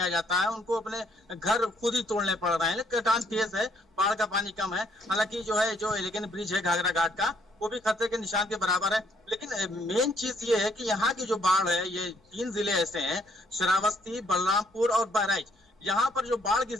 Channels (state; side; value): normal; both; correlation 0.68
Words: आ जाता है। उनको अपने घर खुद ही तोड़ने पड़ रहे हैं। कटान तेज है, बाढ़ का पानी कम है। हालांकि जो है जो एलिगेंट ब्रिज है घाघरा घाट का, वो भी खतरे के निशान के बराबर है। लेकिन मेन चीज ये है कि यहाँ की जो बाढ़ है, ये 3 जिले ऐसे हैं, श्रावस्ती, बलरामपुर और बहराइच। यहाँ पर जो बाढ़ की